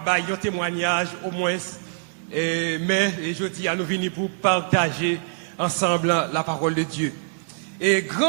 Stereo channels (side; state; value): left; silent; digital silence